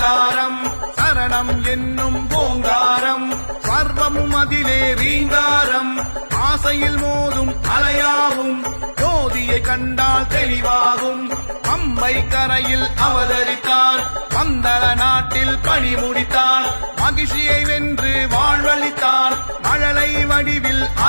சரணம் என்னும் ஓங்காரம், சர்வமும் அதிலே ரீங்காரம், ஆசையில் மோதும் அலையாகும், ஜோதியை கண்டால் தெளிவாகும், பம்பை கரையில் அவதரித்தான், பந்தள நாட்டில் பணி முடித்தான், மகிழ்ச்சியை வென்று வாழ்வளித்தான், மழலை வடிவில்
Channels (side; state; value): both; inverted; correlation -1.00